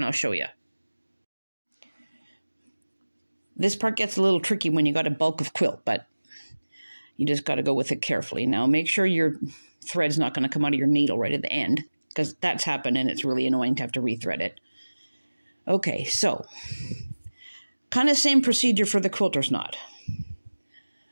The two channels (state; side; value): inverted; both; correlation -1.00